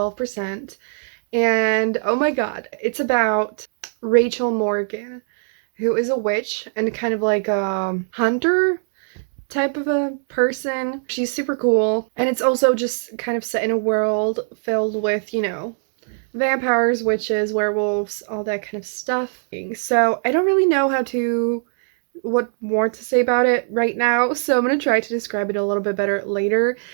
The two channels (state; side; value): silent; left; digital silence